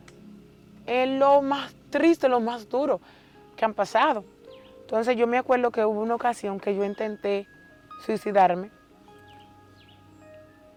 es lo más triste, lo más duro que han pasado. Entonces yo me acuerdo que hubo una ocasión que yo intenté suicidarme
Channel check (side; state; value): both; identical; correlation 1.00